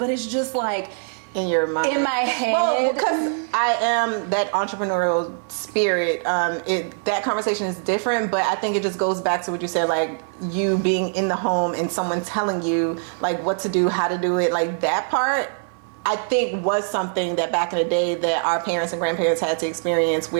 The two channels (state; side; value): silent; left; 64 dB below the other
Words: it's just like, in your mind? In my head. Well, because I am that entrepreneurial spirit. That conversation is different, but I think it just goes back to what you said, like you being in the home and someone telling you like what to do, how to do it. Like that part, I think was something that back in the day that our parents and grandparents had to experience,